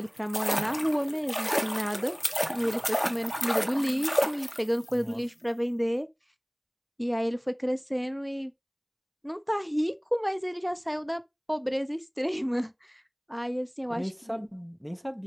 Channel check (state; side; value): identical; both; correlation 1.00